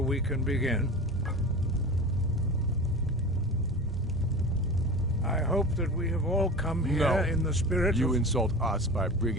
we can begin. I hope that we have all come here in the spirit You of... insult us by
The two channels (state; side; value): normal; both; correlation 0.32